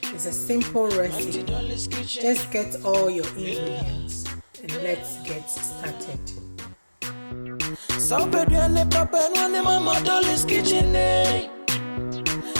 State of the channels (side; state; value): both; inverted; correlation -1.00